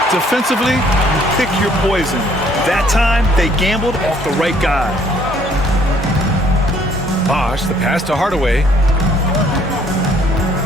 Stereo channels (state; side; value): normal; both; correlation 0.62